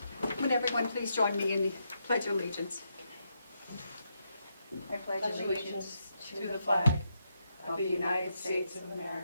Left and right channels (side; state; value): both; inverted; correlation -0.81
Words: Would everyone please join me in the Pledge of Allegiance? I pledge allegiance to the flag of the United States of